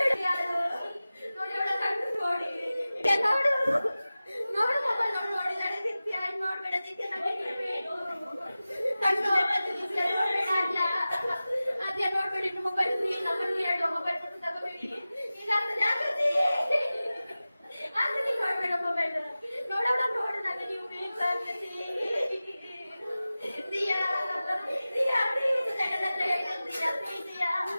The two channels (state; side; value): inverted; both; correlation -0.96